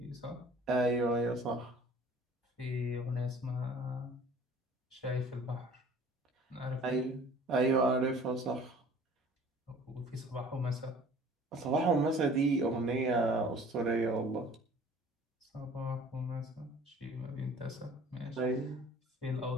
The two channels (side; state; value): both; normal; correlation 0.50